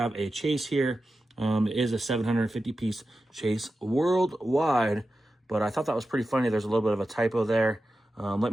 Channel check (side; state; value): both; normal; correlation 0.92